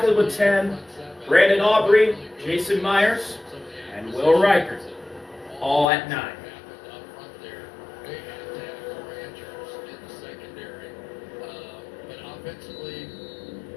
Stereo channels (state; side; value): drops out; right; at 5.9 s